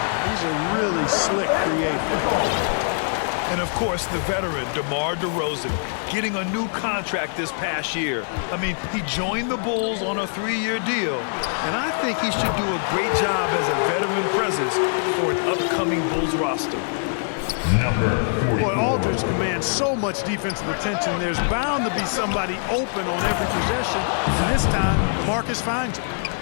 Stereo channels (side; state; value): right; silent; digital silence